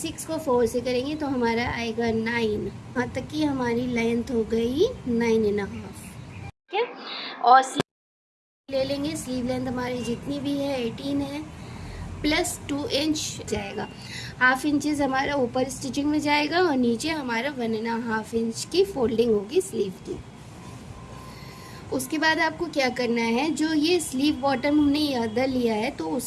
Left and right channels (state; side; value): identical; both; correlation 1.00